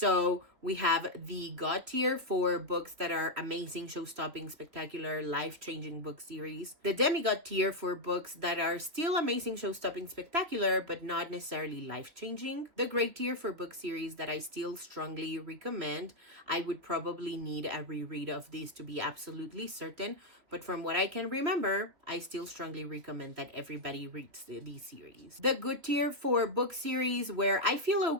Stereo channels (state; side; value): late; left; 3.4 ms